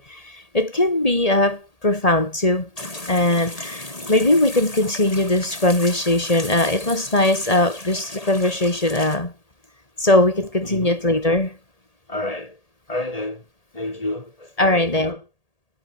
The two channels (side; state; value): right; late; 1.8 ms